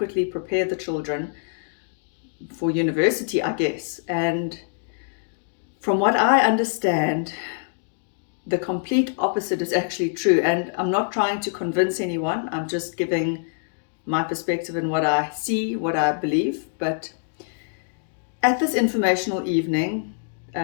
prepare the children for university, I guess. And from what I understand, the complete opposite is actually true. And I'm not trying to convince anyone. I'm just giving my perspective and what I see, what I believe. But at this informational evening,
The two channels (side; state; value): right; silent; digital silence